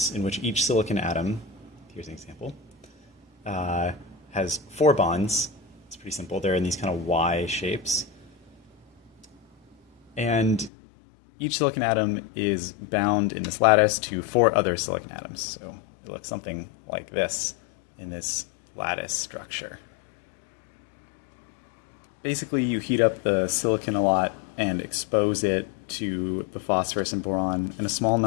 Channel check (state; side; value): drops out; right; at 10.7 s